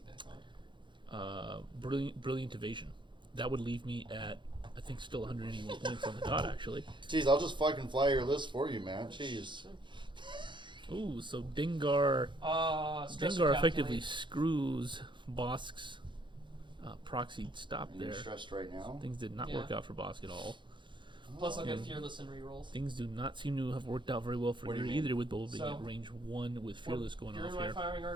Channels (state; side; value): late; left; 0.23 ms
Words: back on. brilliant evasion. That would leave me at I think still 181 points on the dot actually. Jeez, I'll just fucking fly your list for you, man. Jeez. Ooh, so Dengar Stress Dengar to effectively calculate. screws Bosk's proxied stop And you're there. stressed right now. Things did not Yeah. work out for Bosk at all. Plus, I'll get And Fearless and rerolls. things do not seem to have worked out very well for What do you you mean? either, with Boba being So- at range 1 with Fearless going You're off in my here. firing